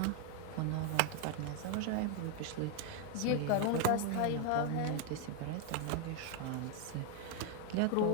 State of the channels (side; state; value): both; different; correlation 0.01